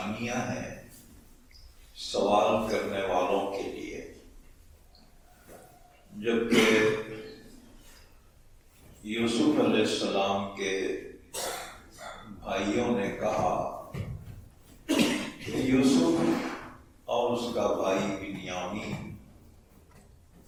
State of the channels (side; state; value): both; identical; correlation 1.00